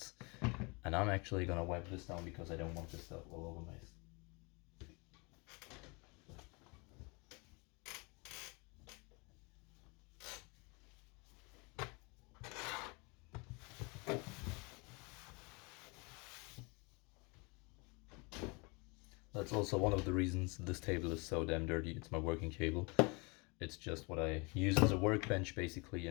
And I'm actually gonna wipe this down because I don't want this stuff all over my. That's also one of the reasons this table is so damn dirty. It's my working table. It's just what I use as a workbench basically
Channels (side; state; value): right; quieter; 29.3 dB